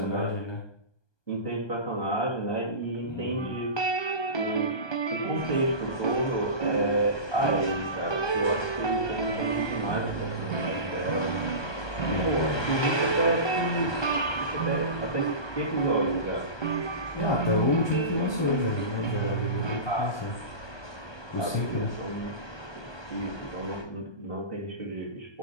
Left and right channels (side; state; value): right; late; 1.2 ms